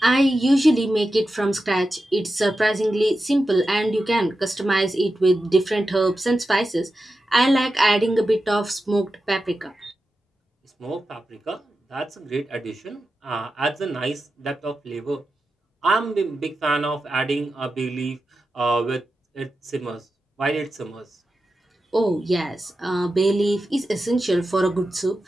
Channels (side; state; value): both; normal; correlation 0.91